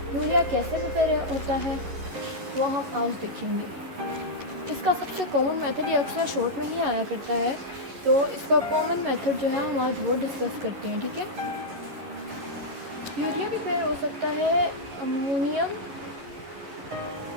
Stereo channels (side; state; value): left; late; 11 ms